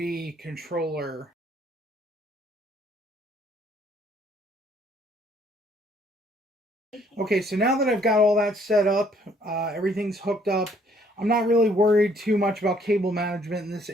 controller. Okay, so now that I've got all that set up, everything's hooked up, I'm not really worried too much about cable management in this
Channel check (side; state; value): both; normal; correlation 0.64